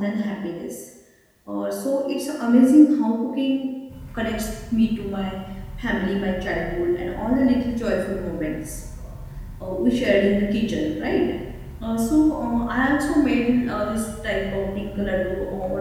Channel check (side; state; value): both; identical; correlation 1.00